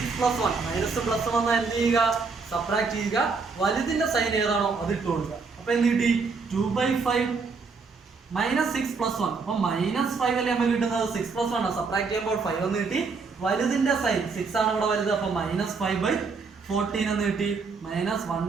+ 1, മൈനസ് പ്ലസ് വന്നാൽ എന്ത് ചെയ്യുക, സബ്ട്രാക്ട് ചെയ്യുക, വലുതിന്റെ സൈൻ ഏതാണോ അത് ഇട്ട് കൊടുക്കുക. അപ്പൊ എന്ത് കിട്ടി, 2/5 -6 + 1. അപ്പൊ -5 അല്ലേ നമുക്ക് കിട്ടുന്നത്, 6 + 1 സബ്ട്രാക്ട് ചെയ്യുമ്പോൾ 5 എന്ന് കിട്ടി. വലുതിന്റെ സൈൻ 6 ആണ് ഇവിടെ വലുത്, അപ്പൊ -5/14 എന്ന് കിട്ടി.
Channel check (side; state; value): left; quieter; 4.7 dB